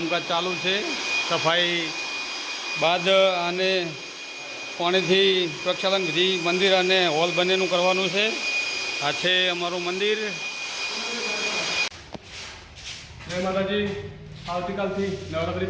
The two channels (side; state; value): both; identical; correlation 1.00